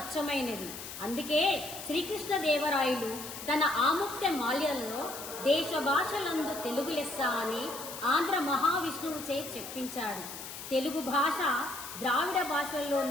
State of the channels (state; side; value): noise; left; hiss, 10 dB below the sound